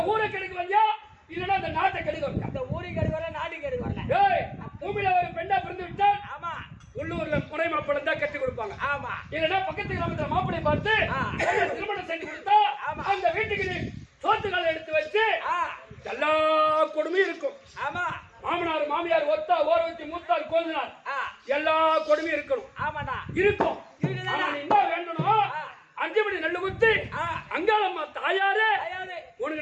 ஊரை கெடுக்க வந்தியா இல்லன்னா அந்த நாட்டை கெடுக்க வந்தியா? அந்த ஊரை கெடுக்க வரல, நாட்டு கெடுக்க வரல. பூமியில ஒரு பெண்ணா பிறந்து விட்டால் ஆமா உள்ளூர்ல முறை மாப்பிள்ளை தான் கட்டி கொடுப்பாங்க. ஆமா இல்லன்னா பக்கத்து கிராமத்துல மாப்பிள்ளை பார்த்து திருமணம் செஞ்சு கொடுத்தா அந்த வீட்டுக்கு நீ சோத்துக்கால எடுத்து வச்சு எல்லா கொடுமையும் இருக்கும். ஆமா மாமனார் மாமியார் ஒத்தா ஓரவத்தி மூத்தார் கோதினார் எல்லா கொடுமையும் இருக்கணும். ஆமாடா இருக்கும். என்ன வேண்டணும்? 5 மணி நெல்லு குத்தி அங்காளம்மா தாயாரே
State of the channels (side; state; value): both; identical; correlation 1.00